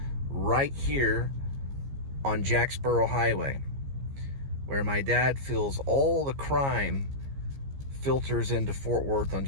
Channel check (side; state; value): left; late; 15 ms